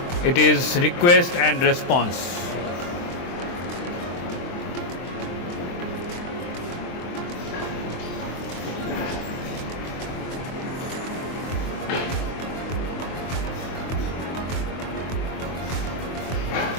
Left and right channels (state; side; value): late; right; 23 ms